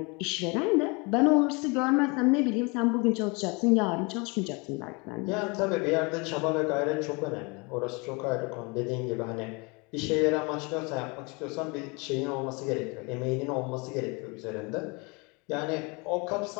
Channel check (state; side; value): quieter; right; 29.4 dB